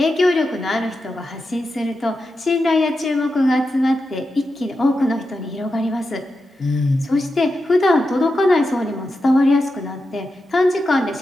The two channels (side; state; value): both; normal; correlation 0.89